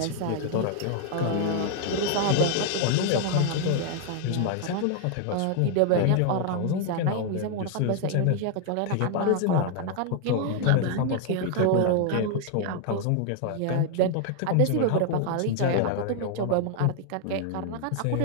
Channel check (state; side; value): different; both; correlation 0.00